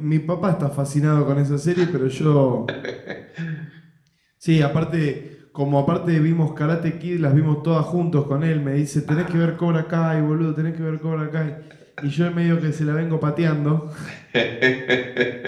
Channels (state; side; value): identical; both; correlation 1.00